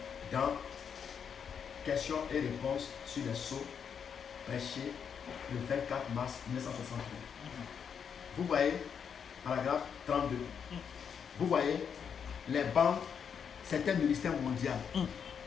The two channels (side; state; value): right; quieter; 7.2 dB